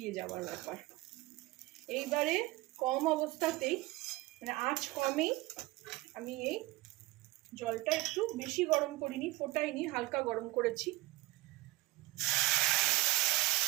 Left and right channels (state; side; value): quieter; left; 20.4 dB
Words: যাওয়ার ব্যাপার। এইবারে কম অবস্থাতেই, মানে আঁচ কমেই আমি এই জলটা একটু বেশি গরম করিনি, ফোটাইনি, হালকা গরম করেছি।